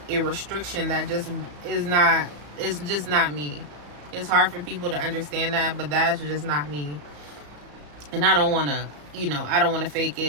a restriction that just is not, it's just not me. It's hard for people to understand that, but that's just not me. And I don't want to, you know, I don't want to fake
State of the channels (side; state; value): left; late; 34 ms